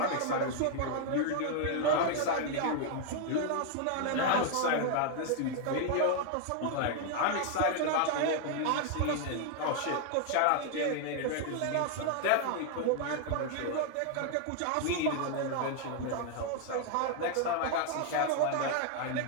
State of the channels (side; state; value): both; different; correlation 0.00